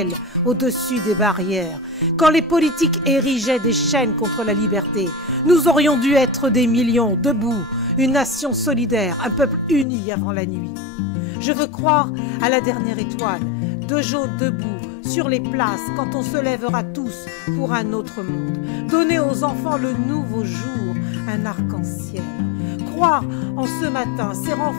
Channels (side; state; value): right; drops out; at 9.9 s